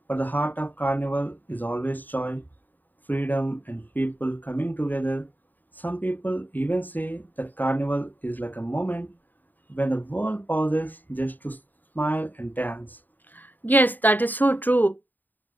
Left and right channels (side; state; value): right; late; 0.087 ms